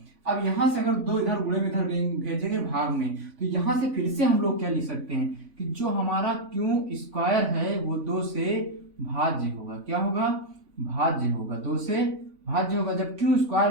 अब यहाँ से अगर 2 इधर गुणे में इधर भेजेंगे भाग में, तो यहाँ से फिर से हम लोग क्या लिख सकते हैं कि जो हमारा q स्क्वायर है वो 2 से भाज्य होगा, क्या होगा, भाज्य होगा, 2 से भाज्य होगा। जब q स्क्वायर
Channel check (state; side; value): late; left; 3.6 ms